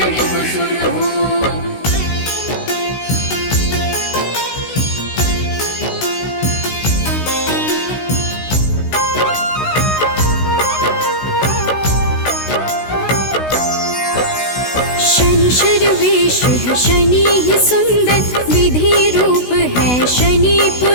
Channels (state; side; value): late; right; 16 ms